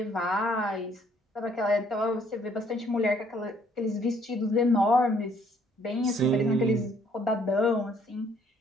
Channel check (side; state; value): both; normal; correlation 0.64